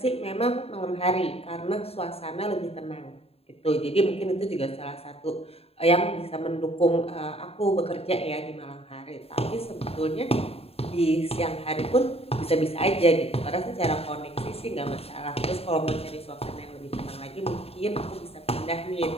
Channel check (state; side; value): late; right; 0.29 ms